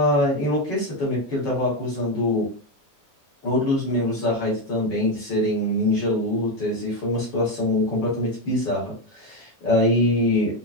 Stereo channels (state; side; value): normal; both; correlation 0.09